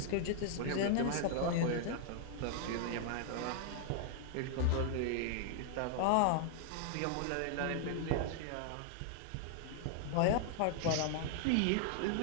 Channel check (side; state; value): both; different; correlation 0.00